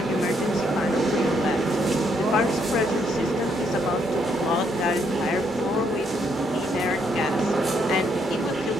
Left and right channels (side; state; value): both; normal; correlation 0.73